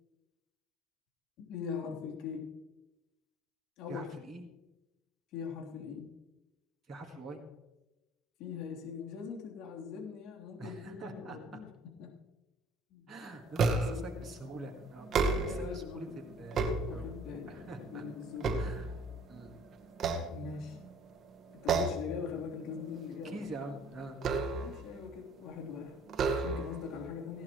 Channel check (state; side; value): normal; both; correlation 0.54